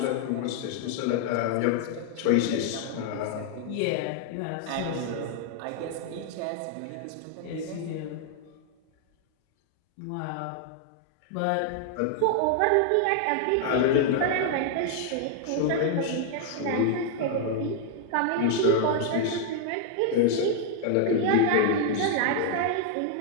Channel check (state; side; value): different; both; correlation 0.00